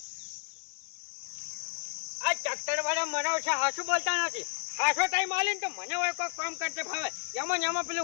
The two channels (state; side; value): silent; right; digital silence